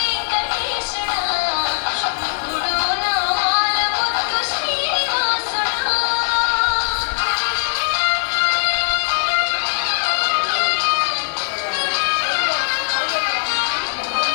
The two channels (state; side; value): silent; right; 66 dB below the other